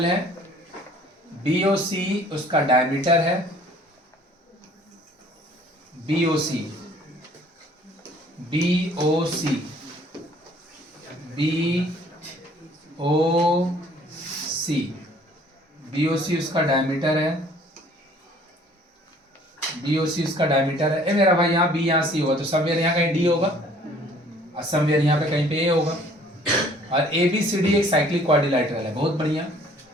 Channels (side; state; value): both; normal; correlation 0.56